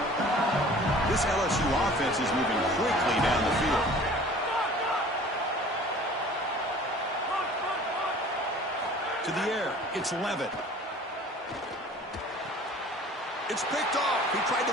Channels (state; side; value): normal; both; correlation 0.47